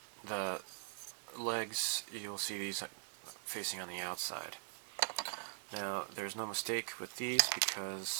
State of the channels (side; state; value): left; silent; digital silence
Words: the legs, you'll see these facing on the outside. Now, there's no mistake with these